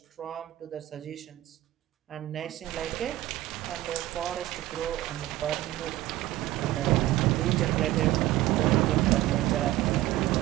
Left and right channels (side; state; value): left; quieter; 15.6 dB